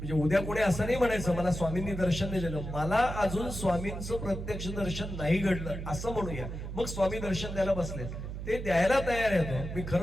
उद्या कोणी असं नाही म्हणायचं मला स्वामींनी दर्शन नाही दिलं, मला अजून स्वामींचं प्रत्यक्ष दर्शन नाही घडलं असं म्हणूया. मग स्वामी दर्शन द्यायला बसले. ते द्यायला तयार आहे. मी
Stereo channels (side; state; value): right; noise; hum, 7 dB below the sound